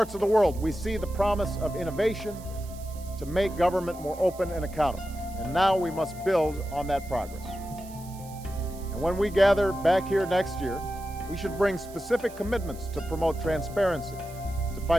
of the world, we see the promise of innovation to make government more open and accountable. And now we must build on that progress. And when we gather back here next year, we should bring specific commitments to promote transparency, to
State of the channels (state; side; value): noise; right; hiss, 20 dB below the sound